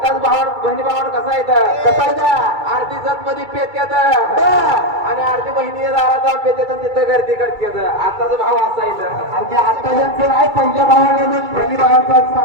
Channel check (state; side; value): late; left; 2.3 ms